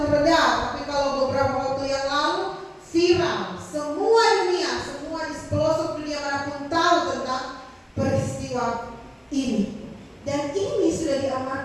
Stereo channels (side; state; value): both; identical; correlation 1.00